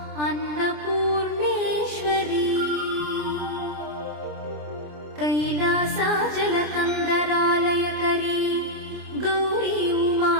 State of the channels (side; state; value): left; late; 27 ms